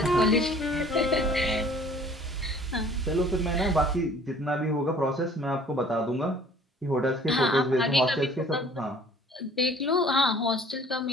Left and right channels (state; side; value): normal; both; correlation 0.53